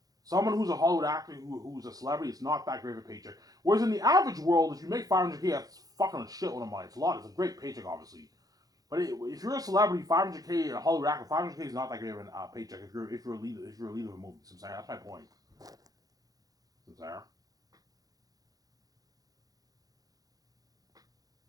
Someone who's a Hollywood actor who's a celebrity, it's not that great of a paycheck. Whereas in the average world, if you make 500K, that's fucking a shitload of money. It's a lot. It's a great paycheck, obviously. But if you're a celebrity, 500K a Hollywood actor, 500K is not that great of a paycheck if you're a lead of a movie. So I'm saying that's my point. So I'm saying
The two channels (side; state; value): left; late; 0.18 ms